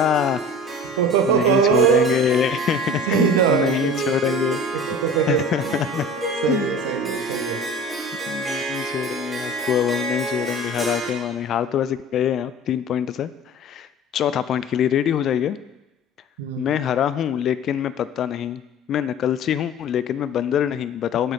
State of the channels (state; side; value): normal; both; correlation 0.40